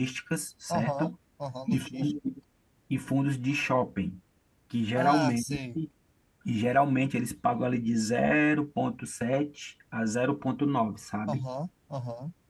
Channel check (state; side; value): identical; both; correlation 1.00